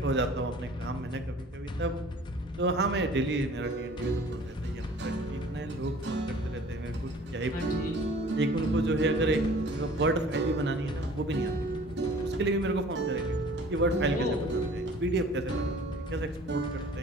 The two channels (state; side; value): normal; both; correlation 0.49